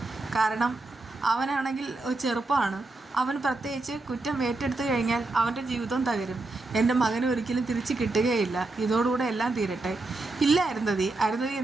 കാരണം അവനാണെങ്കിൽ ചെറുപ്പമാണ്. അവൻ പ്രത്യേകിച്ച് കുറ്റം ഏറ്റെടുത്തു കഴിഞ്ഞാൽ അവൻ്റെ ജീവിതം തകരും. എൻ്റെ മകന് ഒരിക്കലും തിരിച്ച് കിട്ടുകയില്ല. ഇതോടുകൂടെ എല്ലാം തീരട്ടെ. ഇല്ല അരുന്ധതി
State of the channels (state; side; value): quieter; left; 3.2 dB